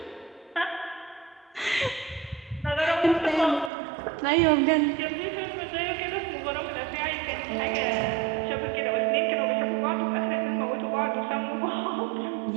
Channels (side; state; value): left; drops out; at 3.7 s